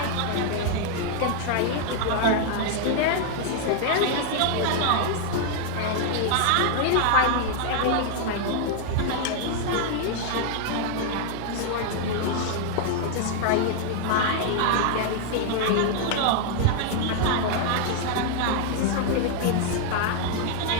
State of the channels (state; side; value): different; both; correlation 0.00